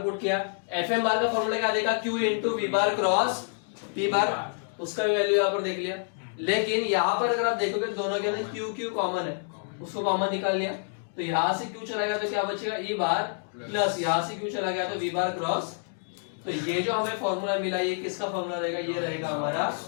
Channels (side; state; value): right; silent; digital silence